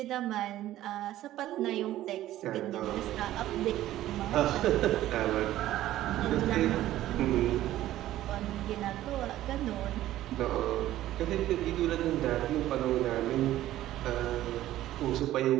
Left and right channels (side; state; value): left; quieter; 14.1 dB